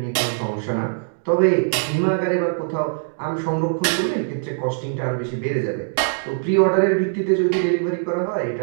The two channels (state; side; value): silent; left; digital silence